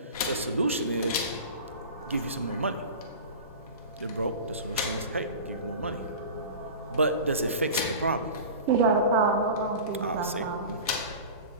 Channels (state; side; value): inverted; both; correlation -0.34